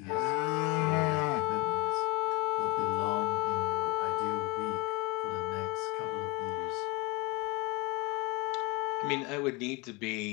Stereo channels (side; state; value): right; quieter; 20.9 dB